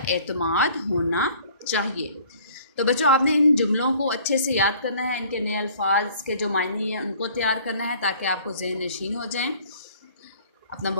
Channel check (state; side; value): inverted; both; correlation -0.53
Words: اعتماد ہونا چاہیے۔ تو بچوں، آپ نے ان جملوں کو اچھے سے یاد کرنا ہے، ان کے نئے الفاظ کے جو معنی ہیں ان کو تیار کرنا ہے تاکہ آپ کو ذہن نشین ہو جائیں۔ اپنا